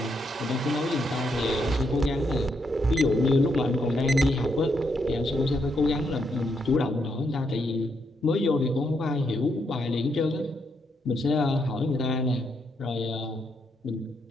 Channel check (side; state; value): both; normal; correlation 0.78